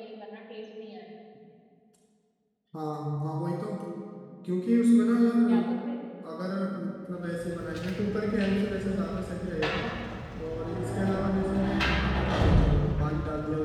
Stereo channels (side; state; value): both; identical; correlation 1.00